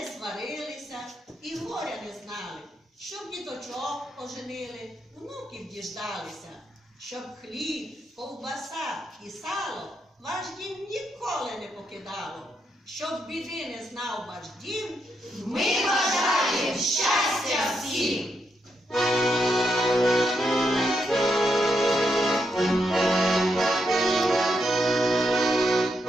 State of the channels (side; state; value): both; normal; correlation 0.81